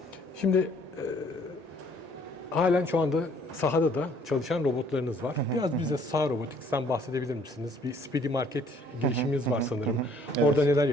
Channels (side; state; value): left; late; 1.9 ms